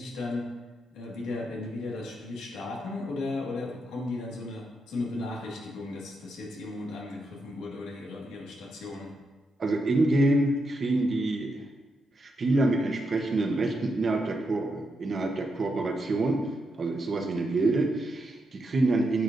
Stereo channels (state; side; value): normal; both; correlation 0.83